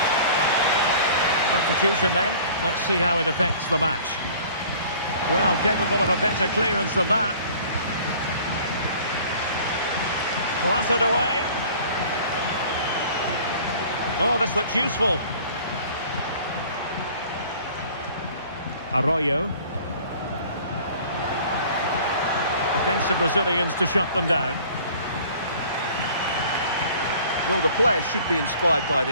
Substitution then. Let's see how it affects the match. Well, capable of a better clearance than that. Clattered away. Oh, this looks useful. Arroyo. Defensive Brazilians to shut them down. Well, the players should be inspired by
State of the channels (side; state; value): both; inverted; correlation -0.49